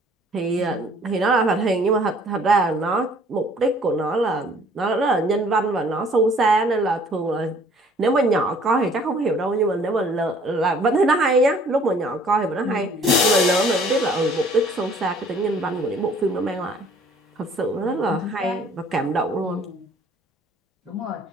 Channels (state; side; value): normal; both; correlation 0.56